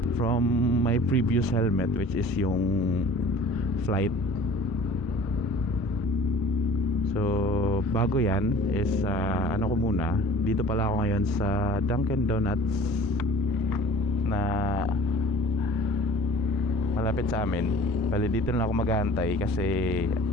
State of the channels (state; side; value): normal; both; correlation 0.46